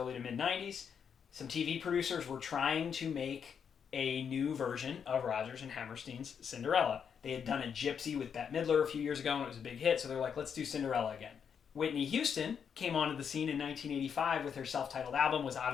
to mid-90s, some TV producers were trying to make a new version of Rodgers and Hammerstein's Cinderella. They had done a Gypsy with Bette Midler a few years ago, and it was a big hit, so they're like, let's do Cinderella again. Whitney Houston came onto the scene in 1985 with her self-titled album, was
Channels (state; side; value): quieter; right; 7.3 dB